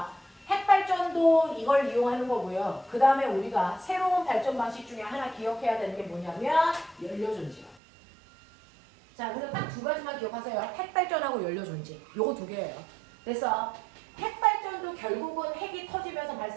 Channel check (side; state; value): left; drops out; at 7.8 s